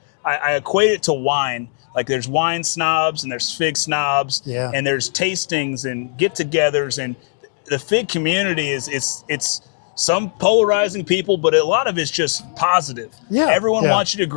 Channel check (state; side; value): silent; right; digital silence